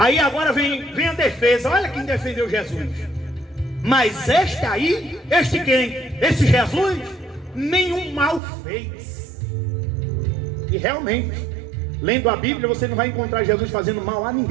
agora vem a defesa. Olha quem defendeu Jesus. Mas este quem? Esse Jesus nenhum mal fez. E realmente, lendo a Bíblia, você não vai encontrar Jesus fazendo mal a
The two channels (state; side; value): drops out; left; at 8.4 s